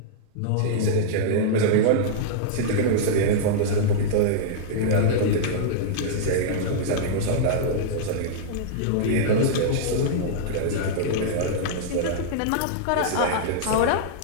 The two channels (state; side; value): different; both; correlation -0.02